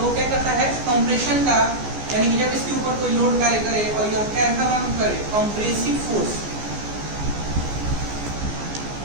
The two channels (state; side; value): late; left; 14 ms